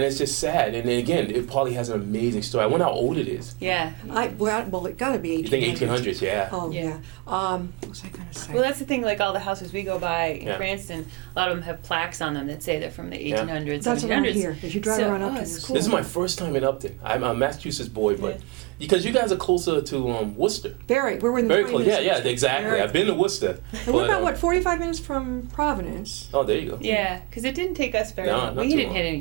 it's just sad. And then again, it probably has an amazing story. I wonder how old it is. Yeah. Well, it got to be You 1800s. think 1800s? Yeah. Oh Yeah. yeah. What was I going to say? Well, that's the thing. Like all the houses we go by in Yeah. Cranston, a lot of them have plaques on them that say they're from the Yeah. 1800s, That's around 1700s. here. As you drive So- around oh, Upton, it's it's cool. This is my first time in Upton. I'm a Massachusetts boy, but Yeah. because you guys are closer to Worcester. Very. We're in Very 20 close. Yeah, minutes. yeah, exactly. Very. I've been to Worcester. And we're but, about 45 minutes from Providence. Oh, there you go. Yeah, because it didn't take us very No, long. not We too didn't long. hit any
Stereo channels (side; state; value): left; quieter; 23.7 dB